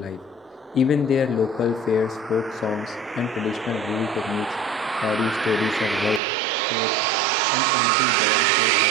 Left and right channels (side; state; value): left; drops out; at 6.2 s